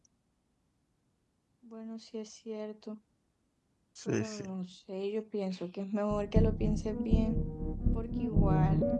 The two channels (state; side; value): identical; both; correlation 1.00